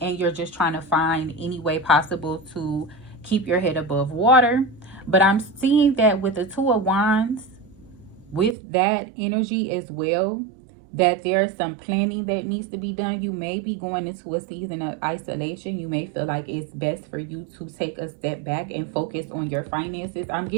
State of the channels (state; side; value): drops out; left; at 8.6 s